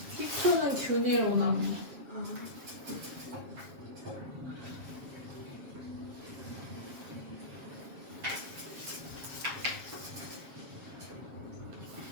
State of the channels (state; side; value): late; left; 7.4 ms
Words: 식초는 균일 혼합물.